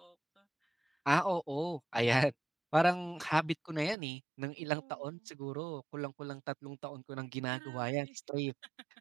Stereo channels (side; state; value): left; drops out; at 4.0 s